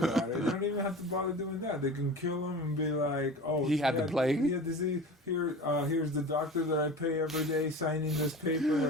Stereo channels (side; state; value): both; normal; correlation 0.35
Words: it. They don't even have to bother doing that. They can kill him and be like, oh, he had the plague? He had disease. Here's the doctor that I pay every day signing this paper